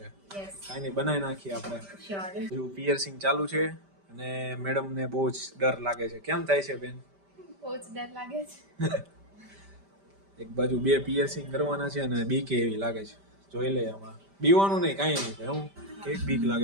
યસ, કાંઈ નહીં, બનાવી નાખીએ આપણે. શ્યોર. હજુ પિયર્સિંગ ચાલુ છે અને મેડમને બહુ જ ડર લાગે છે. કેમ થાય છે બેન? બહુ જ ડર લાગે છે. એક બાજુ બે પિયર્સિંગ કરવાના છે અને બીક એવી લાગે છે. જોઈ લે હમણાં. બીવાનું નહીં, કાંઈ નહીં થાય. હું કેક બીક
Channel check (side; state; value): left; late; 5.1 ms